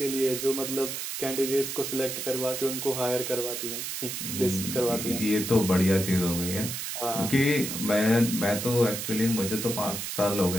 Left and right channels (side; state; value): right; noise; hiss, 5 dB below the sound